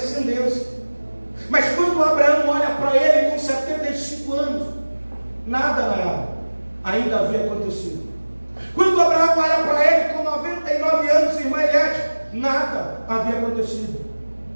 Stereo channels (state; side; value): inverted; both; correlation -1.00